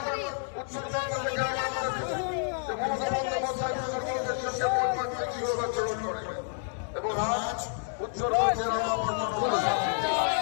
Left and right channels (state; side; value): silent; right; 58 dB below the other